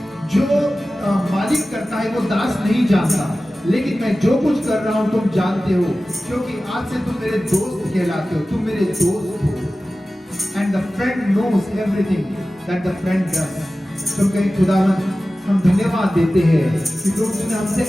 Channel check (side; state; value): both; normal; correlation 0.96